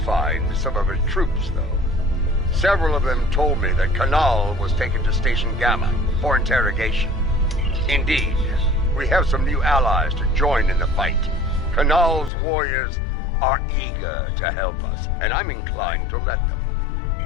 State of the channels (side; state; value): right; drops out; at 12.3 s